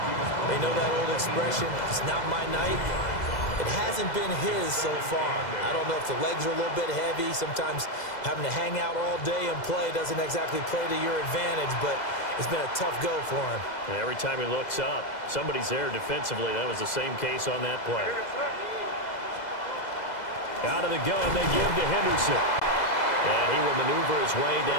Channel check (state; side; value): late; right; 2.0 ms